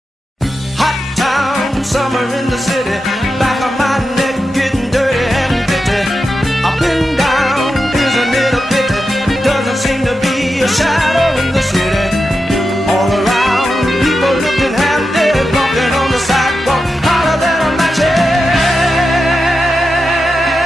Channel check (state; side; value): normal; both; correlation 0.89